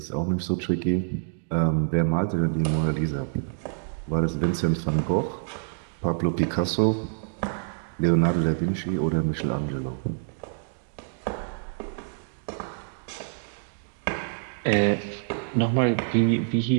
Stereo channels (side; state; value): left; silent; 60 dB below the other